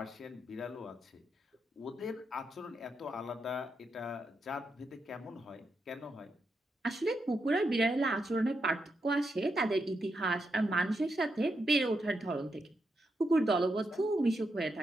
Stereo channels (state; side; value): normal; both; correlation 0.83